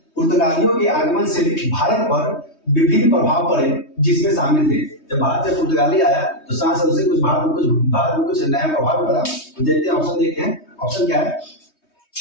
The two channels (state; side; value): late; right; 3.2 ms